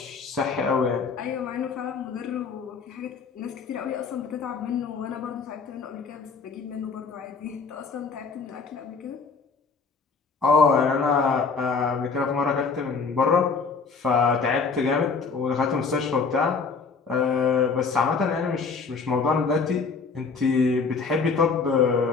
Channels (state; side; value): quieter; right; 4.9 dB